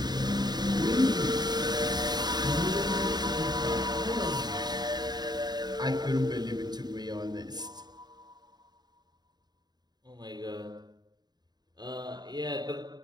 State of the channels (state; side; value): late; left; 0.20 ms